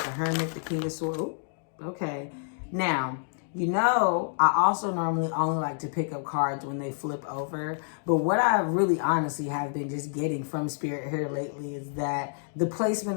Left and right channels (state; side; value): silent; right; digital silence